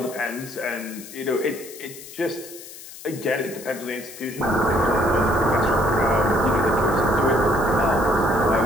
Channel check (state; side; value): noise; left; hiss, 15 dB below the sound